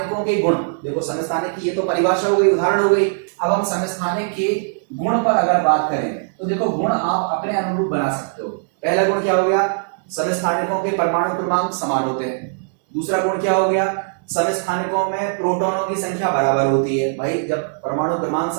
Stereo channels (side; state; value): left; silent; digital silence